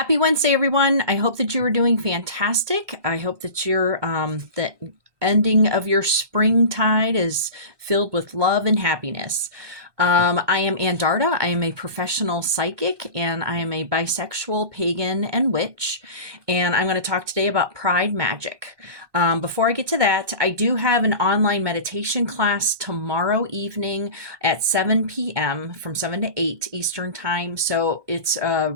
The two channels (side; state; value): left; late; 1.2 ms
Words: Wednesday, everyone. I hope that you are doing fantastic. I hope that the ending of your springtide is filled with love and happiness. I am Andarta. I am a professional psychic and I am a bisexual pagan and witch. And I'm going to talk today about Pride Magic. Before I get to that, I do have an online meditation class tomorrow evening at 7 p.m. from 7 to 8 Eastern Time. So it's